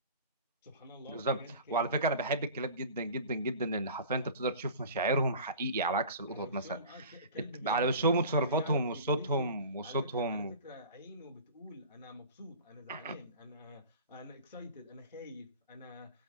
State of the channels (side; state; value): both; inverted; correlation -0.40